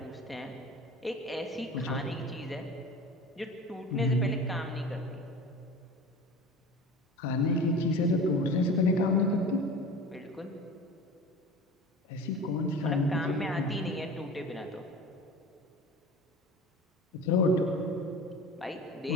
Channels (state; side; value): normal; both; correlation 0.36